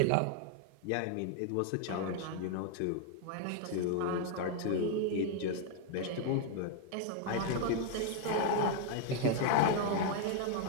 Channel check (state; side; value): different; both; correlation 0.00